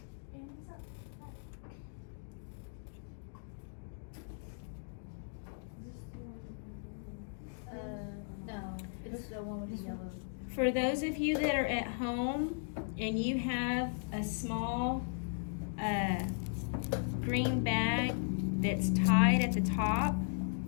No, it's the one with the yellow. For those of you that are at home and you have a small green bag that's tied at the top,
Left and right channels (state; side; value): silent; right; digital silence